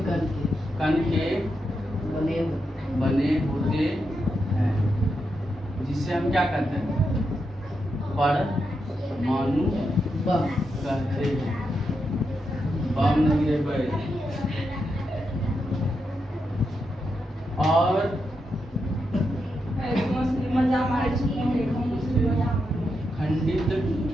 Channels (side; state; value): both; normal; correlation 0.85